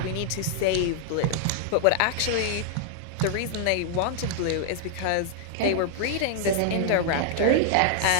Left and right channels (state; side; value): different; both; correlation -0.01